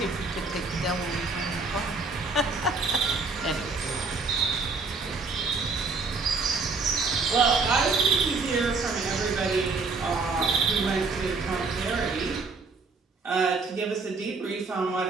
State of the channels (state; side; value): quieter; left; 4.1 dB